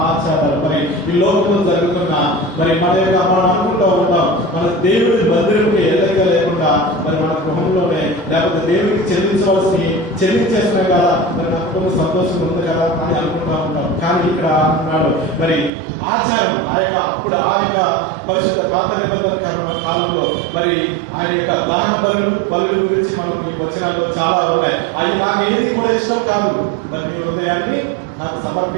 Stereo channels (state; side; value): drops out; left; at 15.7 s